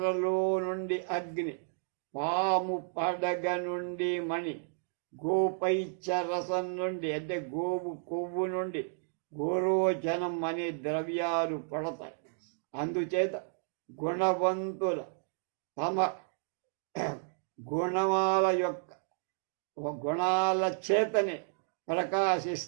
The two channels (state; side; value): silent; left; digital silence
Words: నుండి అగ్ని, పాము పడగ నుండి మణి, గోపైచ్చరసం నుండి అంటే గోవు కొవ్వు నుండి గోరోచనం అనే ద్రవ్యాలు పడతాయి. అందుచేత గుణవంతుల తమ గుణాల చేతనే